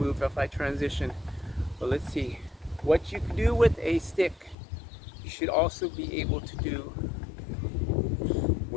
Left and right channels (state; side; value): drops out; right; at 4.5 s